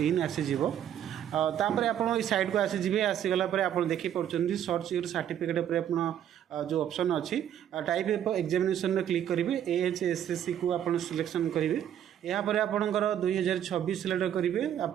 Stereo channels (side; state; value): left; quieter; 10.2 dB